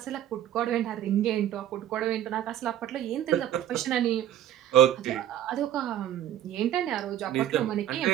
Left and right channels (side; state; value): left; quieter; 11.5 dB